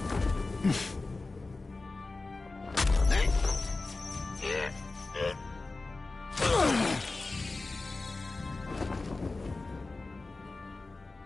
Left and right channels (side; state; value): right; quieter; 3.4 dB